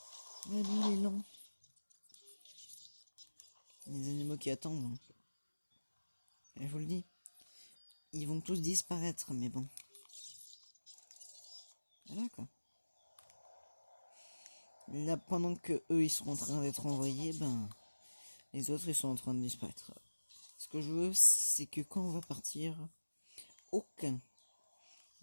Ouais, lui il est lent. Les animaux qui attendent. Hein. Et je vous le dis. Ils vont tous disparaître, mais bon. Voilà quoi. Là, pendant que eux ils sont en train d'être envoyés, ben les autres ils sont en train de disparaître. Ce que je veux, c'est que quand on va partir, aucun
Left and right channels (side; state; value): both; inverted; correlation -1.00